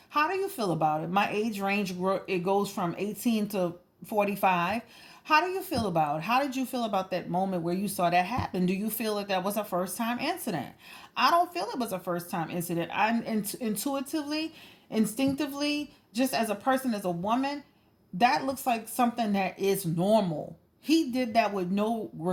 How do you feel about it? My age range it goes from 18 to 45. How do you feel about it? How did you feel about that moment where you saw that happen? Do you feel that was a first time incident? I don't feel it was a first time incident. I'm intuitively, instinctively, just as a person, as a woman, that looks like something that is normal. He did that with no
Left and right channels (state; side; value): identical; both; correlation 1.00